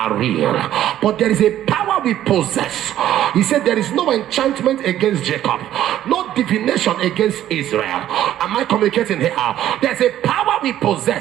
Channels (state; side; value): quieter; left; 12.2 dB